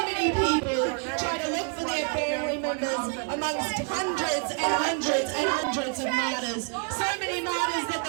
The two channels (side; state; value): left; quieter; 38.3 dB